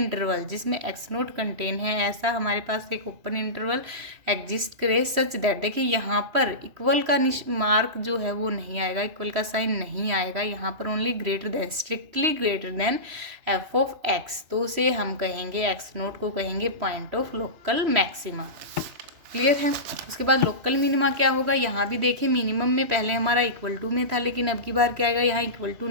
जिसमें एक्स नोट कंटेन है, ऐसा हमारे पास एक ओपन इंटरवल एग्जिस्ट करे सच दैट, देखिए यहाँ पर इक्वल का मार्क जो है वो नहीं आएगा, इक्वल का साइन नहीं आएगा, यहाँ पर only greater than, strictly greater than F of x, तो उसे हम कहेंगे, एक्स नोट को कहेंगे point of local maxima. Clear है। उसके बाद लोकल मिनिमा क्या होगा, यहाँ भी देखिए मिनिमम में पहले हमारा इक्वल टू में था, लेकिन अब की बार क्या आएगा, यहाँ इक्वल टू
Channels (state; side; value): late; left; 3.1 ms